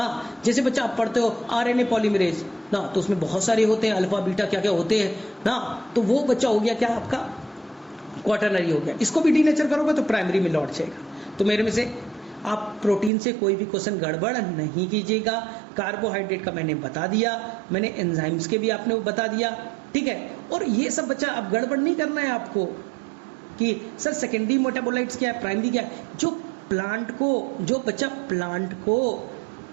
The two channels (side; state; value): left; drops out; at 13.1 s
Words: जैसे बच्चा आप पढ़ते हो आरएनए पॉलीमरेज ना, तो उसमें बहुत सारे होते हैं, अल्फा बीटा क्या क्या होते हैं ना, तो वो बच्चा हो गया क्या आपका क्वाटरनरी हो गया। इसको भी डीनेचर करोगे तो प्राइमरी में लौट जाएगा। तो मेरे में से आप प्रोटीन से कोई भी क्वेश्चन गड़बड़ नहीं कीजिएगा। कार्बोहाइड्रेट का मैंने बता दिया, मैंने एंजाइम्स के भी आपने बता दिया, ठीक है। और ये सब बच्चा अब गड़बड़ नहीं करना है आपको कि सर सेकेंडरी मेटाबोलाइट्स क्या है, प्राइमरी क्या है। जो प्लांट को, जो बच्चा प्लांट को